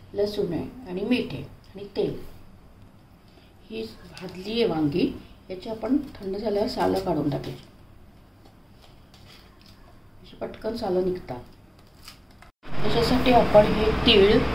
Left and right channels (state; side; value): identical; both; correlation 1.00